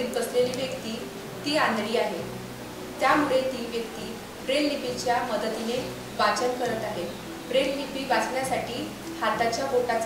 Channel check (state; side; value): identical; both; correlation 1.00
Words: बसलेली व्यक्ती ती आंधळी आहे, त्यामुळे ती व्यक्ती ब्रेल लिपीच्या मदतीने वाचन करत आहे. ब्रेल लिपी वाचण्यासाठी हाताच्या